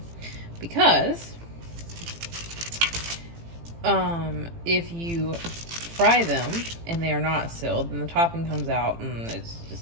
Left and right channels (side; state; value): left; late; 18 ms